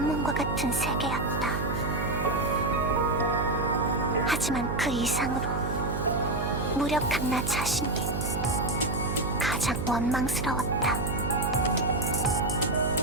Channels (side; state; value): right; noise; hum, 3 dB below the sound